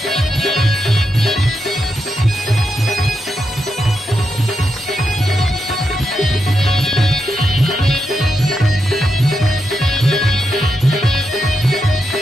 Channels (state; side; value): normal; both; correlation 0.85